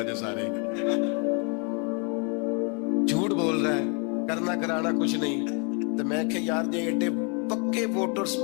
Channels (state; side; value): quieter; right; 35.8 dB